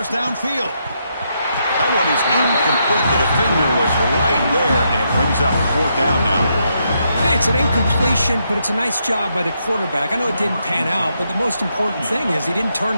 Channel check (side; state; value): both; inverted; correlation -0.79